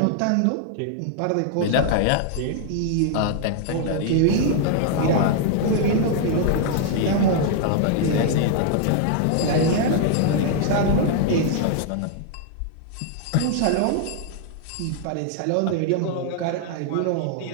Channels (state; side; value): different; both; correlation 0.00